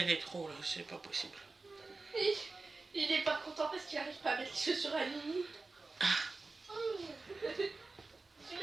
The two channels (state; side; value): quieter; left; 3.6 dB